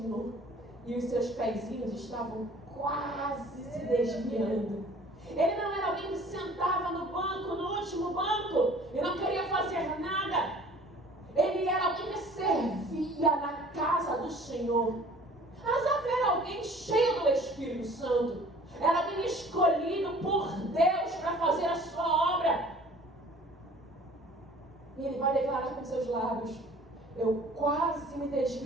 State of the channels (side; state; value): both; normal; correlation 0.50